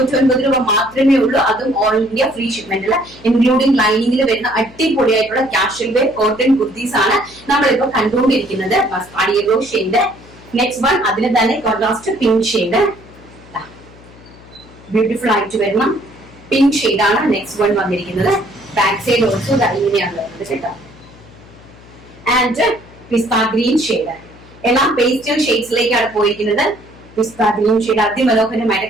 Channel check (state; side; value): noise; left; hum, 22 dB below the sound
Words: രൂപ മാത്രമേ ഉള്ളൂ. അതും ഓൾ ഇന്ത്യ ഫ്രീ ഷിപ്മെന്റില് ഇൻക്ലൂഡിംഗ് ലൈനിങ്ങിൽ വരുന്ന അടിപൊളിയായിട്ടുള്ള കാഷ്വൽ വെയർ കോട്ടൺ കുർത്തീസ് ആണ് നമ്മളിപ്പോ കണ്ടുകൊണ്ടിരിക്കുന്നത്. Mustard yellow shade. Next one അതിന് തന്നെ കോൺട്രാസ്റ്റ് പിങ്ക് ഷെയ്ഡ്. ബ്യൂട്ടിഫുൾ ആയിട്ട് വരണം പിങ്ക് ഷെയ്ഡാണ് നെക്സ്റ്റ് വൺ വന്നിരിക്കുന്നത്. ബാക്ക് സൈഡ് ഓൾസോ ഇങ്ങനെയാണ് വരുന്നത് കേട്ടോ. ആൻഡ് പിസ്ത ഗ്രീൻ ഷെയ്ഡ്, എല്ലാം പേസ്റ്റൽ ഷെയ്ഡ്സിലേക്കാണ് പോയിരിക്കുന്നത്. പിസ്ത ഗ്രീൻ ഷെയ്ഡ് അതിമനോഹരമായിട്ട്